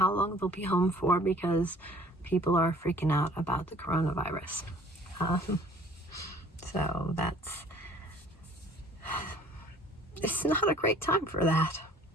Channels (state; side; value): normal; both; correlation 0.53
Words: long they'll be home for because people are freaking out about the coronavirus. So it's not a great time for that